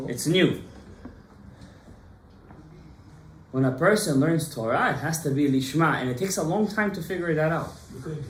It's new. When a person learns Torah, it has to be lishma, and it takes a long time to figure that out. You couldn't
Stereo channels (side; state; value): both; identical; correlation 1.00